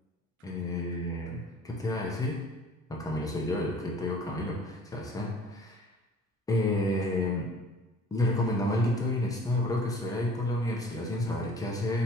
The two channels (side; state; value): both; normal; correlation 0.49